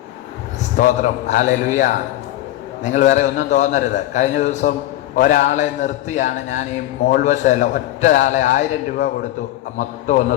സ്തോത്രം. ഹല്ലേലൂയ. നിങ്ങൾ വേറെ ഒന്നും തോന്നരുത്. കഴിഞ്ഞ ദിവസം ഒരാളെ നിർത്തിയാണ് ഞാൻ ഈ മോൾവശമല്ല, ഒറ്റയാളെ 1000 രൂപ കൊടുത്തു മൊത്തം ഒന്ന്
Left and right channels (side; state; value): right; quieter; 14.8 dB